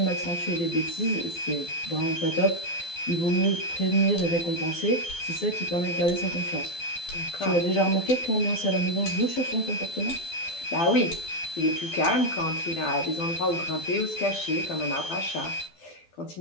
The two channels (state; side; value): late; right; 12 ms